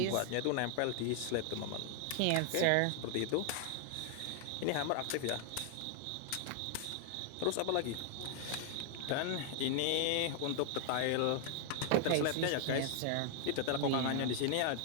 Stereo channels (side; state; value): both; different; correlation 0.00